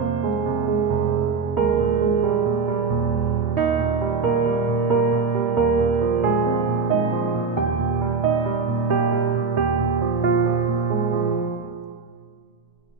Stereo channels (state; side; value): quieter; left; 4.9 dB